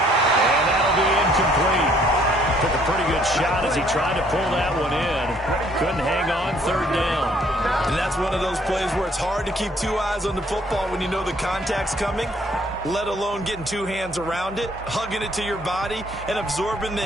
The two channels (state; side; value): normal; both; correlation 0.63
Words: that'll be incomplete. Took a pretty good shot as he tried to pull that one in. Couldn't hang on, third down. And that's one of those plays where it's hard to keep two eyes on the football when you know the contact's coming, let alone getting two hands around it, hugging it to your body, and absorbing the